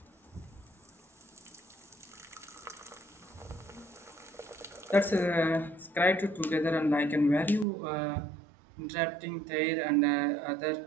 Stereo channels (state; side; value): drops out; left; at 7.7 s